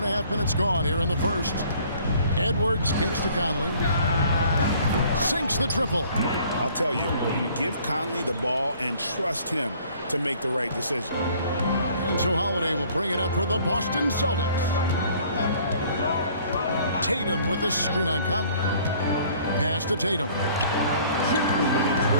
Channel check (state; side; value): inverted; both; correlation -0.56